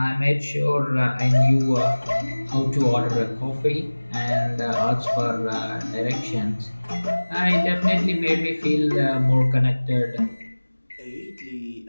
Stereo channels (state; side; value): inverted; both; correlation -1.00